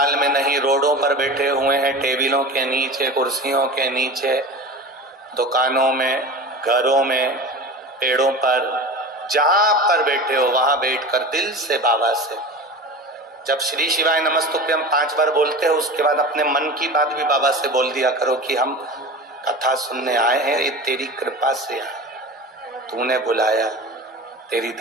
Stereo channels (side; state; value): both; normal; correlation 0.32